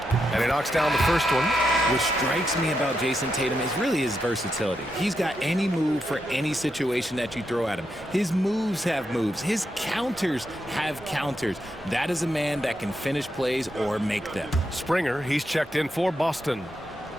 And he knocks down the first one. What strikes me about Jason Tatum is really his versatility. He's got any move for any situation that you throw at him. His moves have moves. His counters have counters. That is a man that can finish plays or make them. Springer, he's checked in for Boston.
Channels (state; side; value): normal; both; correlation 0.84